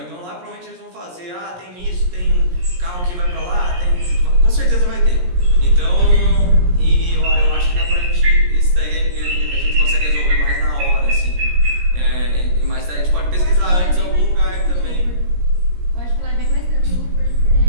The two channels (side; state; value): left; late; 17 ms